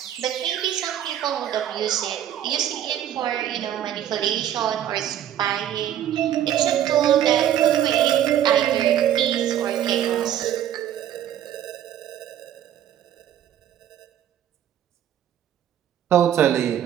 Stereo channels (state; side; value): quieter; left; 11.0 dB